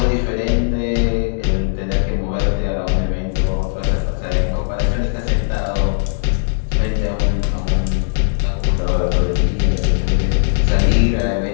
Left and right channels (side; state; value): right; silent; digital silence